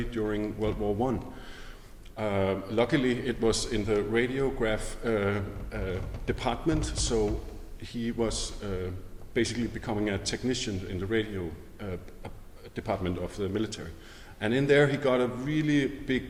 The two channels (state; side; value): identical; both; correlation 1.00